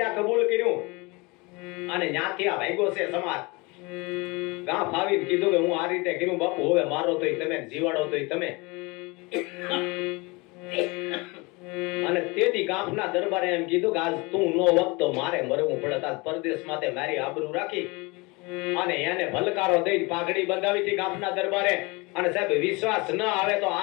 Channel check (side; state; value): right; quieter; 26.2 dB